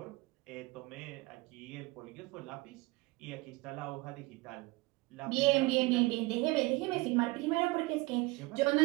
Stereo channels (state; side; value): quieter; left; 23.2 dB